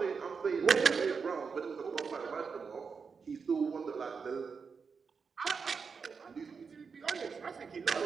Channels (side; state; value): left; quieter; 5.5 dB